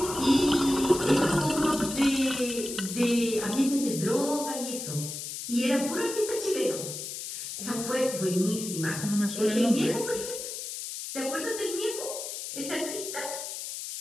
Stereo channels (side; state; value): left; noise; hiss, 7 dB below the sound